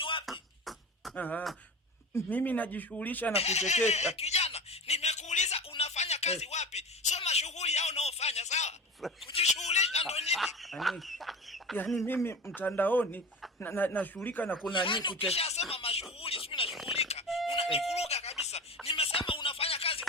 wapi? Mimi najishughulisha na kuchekesha. Kijana, nimekuuliza unafanya kazi wapi? Sema shughuli yao unaofanya, sawa? Kujishughulisha ndo nini? Yaani mimi mtandaoni nashughulika na kuna nini kuchekesha. Ukishasema mashughuli, sio nashughulika. Unanivuruga kabisa. Nimesema unafanya kazi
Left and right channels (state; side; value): normal; both; correlation 0.31